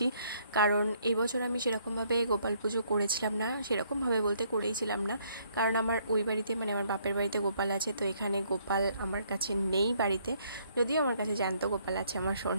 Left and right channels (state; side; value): inverted; both; correlation -0.68